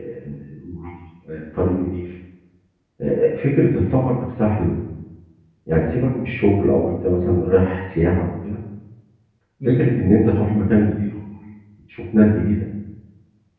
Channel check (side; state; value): both; identical; correlation 1.00